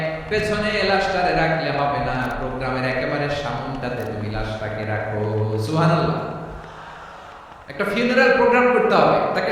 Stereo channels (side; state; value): both; identical; correlation 1.00